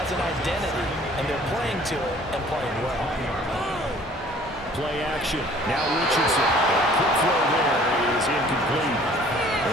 an identity, and they're playing to it and playing well. Play action. Now Richardson. Quick throw there is incomplete.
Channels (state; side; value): normal; both; correlation 0.53